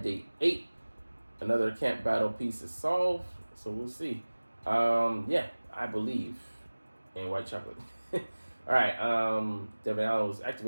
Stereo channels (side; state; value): both; inverted; correlation -1.00